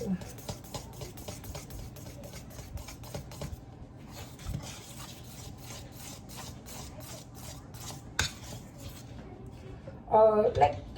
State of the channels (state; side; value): identical; both; correlation 1.00